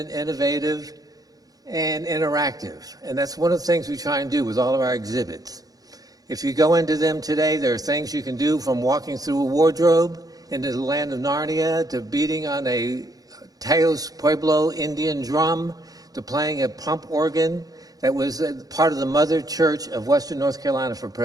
innovative, and interactive. And that's one of the things we try and do with all of our exhibits. If you go into them today, there are things you can do from walking through a wardrobe into the land of Narnia, to beating on a Teos Pueblo Indian drum, to playing a pump organ that was part of the mother church of Western North Carolina for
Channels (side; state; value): left; late; 0.18 ms